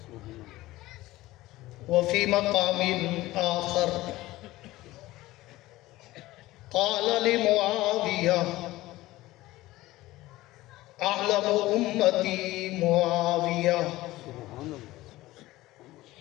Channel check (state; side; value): quieter; right; 17.7 dB